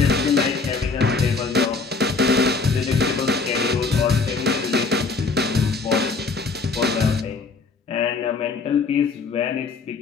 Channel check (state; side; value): quieter; right; 4.3 dB